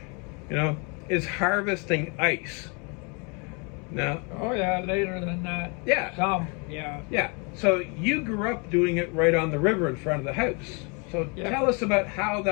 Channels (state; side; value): quieter; right; 33.1 dB